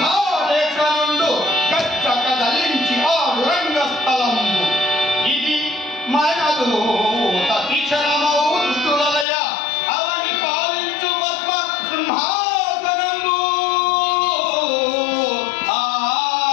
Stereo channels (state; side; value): drops out; right; at 9.2 s